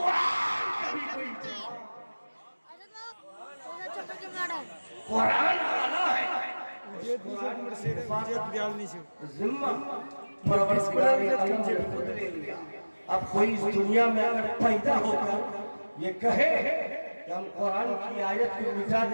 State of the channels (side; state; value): both; inverted; correlation -1.00